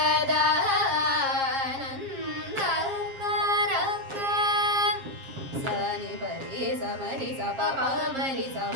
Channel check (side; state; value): left; late; 7.5 ms